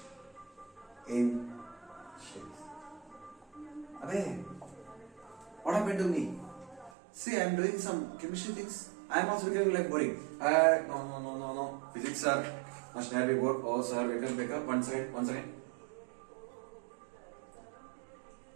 in shapes. Abey, what happened to me? See, I am doing some chemistry things. I am also becoming like boring. No. Physics sir, must never be bored. Oh sir, wake up. One second.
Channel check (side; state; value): left; drops out; at 6.9 s